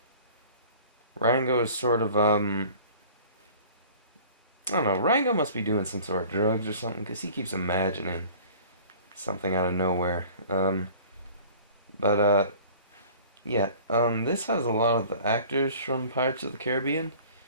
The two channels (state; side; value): inverted; both; correlation -0.46